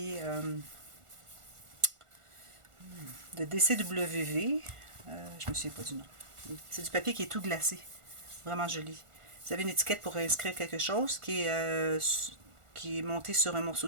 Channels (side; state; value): left; late; 1.4 ms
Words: de DCWV. Je me souviens pas du nom. C'est du papier qui est tout glacé. Vraiment joli. Vous avez une étiquette pour inscrire quelque chose qui est monté sur un morceau